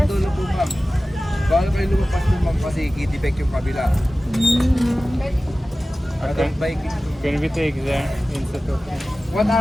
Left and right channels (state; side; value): normal; both; correlation 0.96